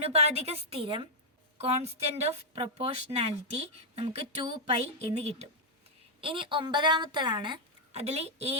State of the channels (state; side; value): normal; both; correlation -0.04